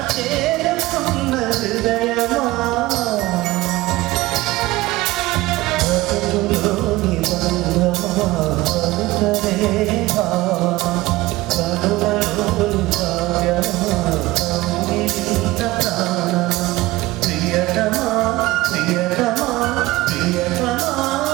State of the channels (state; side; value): quieter; left; 19.1 dB